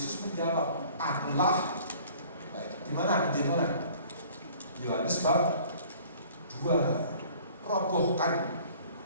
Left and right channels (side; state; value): both; inverted; correlation -0.51